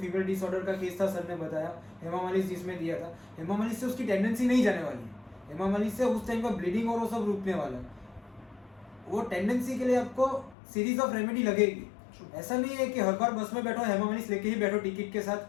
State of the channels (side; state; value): right; drops out; at 10.6 s